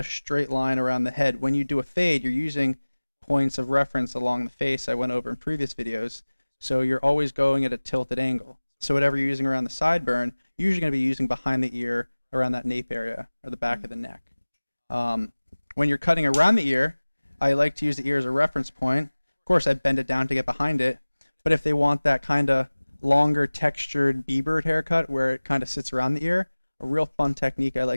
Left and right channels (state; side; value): inverted; both; correlation -1.00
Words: straight line around the head. When you do a fade, you're using points of reference along the face I went over in previous videos. So you're always going at a tilted angle. So whatever you're using around the sideburn, you're usually going to be using behind the ear, around that nape area, or the back of the neck. When you're cutting around the ear, I like to use the ear as a reference point. Of course, I bend it down to get behind it. But if they want that kind of longer textured B-bird haircut where it kind of sits around the ear, a real fun technique I